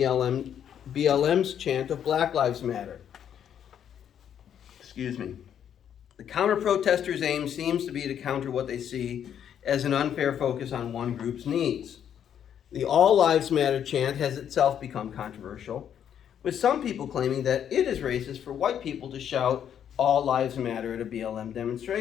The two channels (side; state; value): right; quieter; 9.2 dB